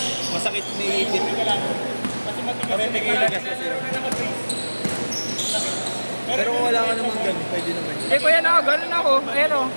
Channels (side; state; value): both; inverted; correlation -1.00